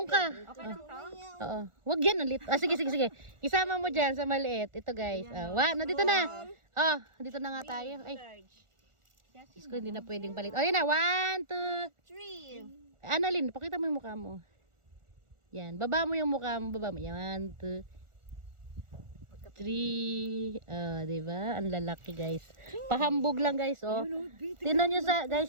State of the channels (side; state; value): left; late; 1.4 ms